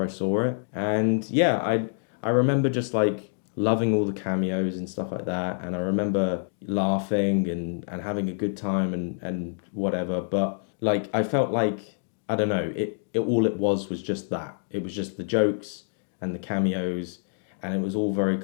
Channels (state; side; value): silent; right; digital silence